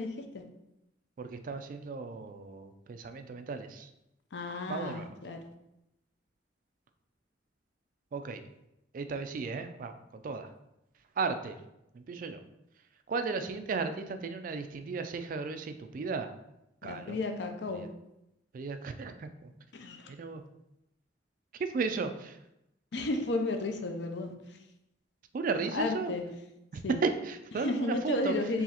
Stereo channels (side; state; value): both; normal; correlation 0.28